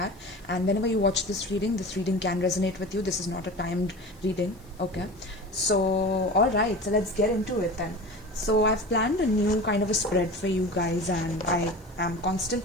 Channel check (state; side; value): noise; left; hiss, 30 dB below the sound